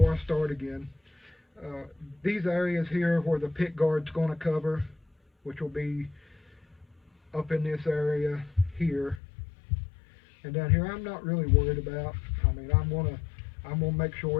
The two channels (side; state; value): right; drops out; at 9.2 s